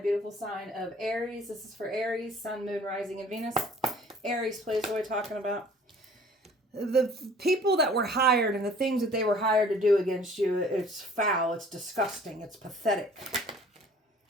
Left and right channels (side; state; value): both; normal; correlation 0.52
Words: sign of Aries. This is for Aries, Sun, Moon, Rising, and Venus. Aries, please, what are we talking about? The people that were hired and the things that they were hired to do against you, it's foul, it's disgusting, it's pathetic.